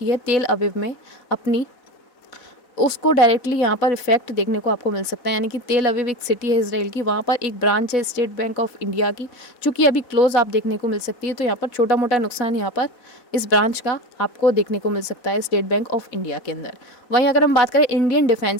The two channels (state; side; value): late; right; 3.7 ms